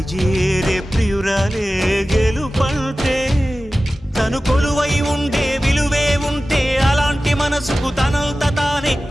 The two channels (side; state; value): both; normal; correlation 0.96